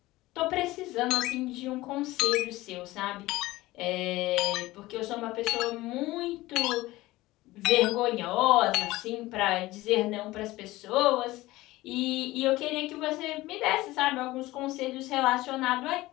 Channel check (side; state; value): right; quieter; 18.4 dB